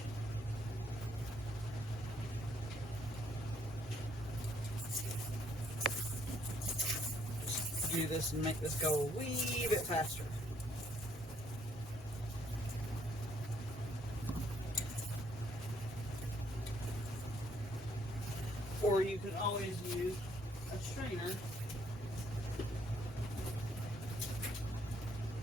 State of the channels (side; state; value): both; normal; correlation 0.68